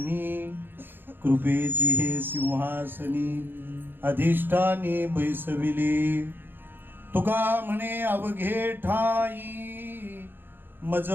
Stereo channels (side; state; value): left; late; 0.099 ms